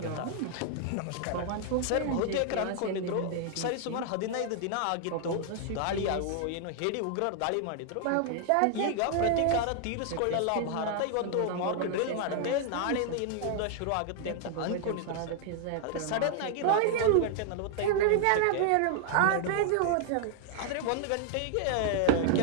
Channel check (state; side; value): different; both; correlation 0.00